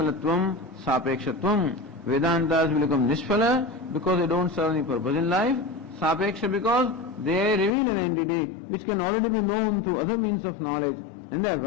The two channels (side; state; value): right; drops out; at 7.8 s